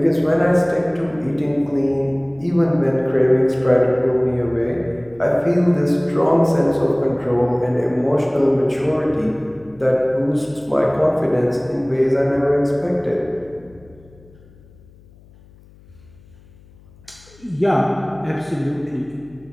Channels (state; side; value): noise; left; hum, 26 dB below the sound